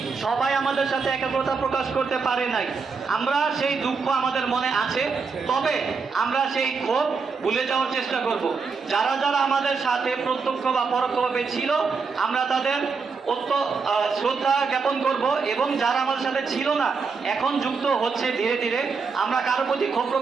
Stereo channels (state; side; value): quieter; left; 5.0 dB